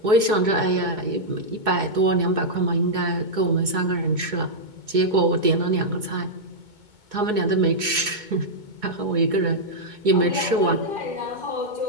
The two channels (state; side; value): late; left; 2.2 ms